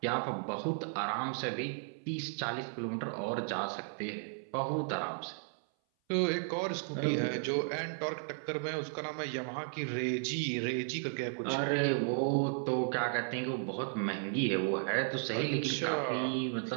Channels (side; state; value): left; silent; 55 dB below the other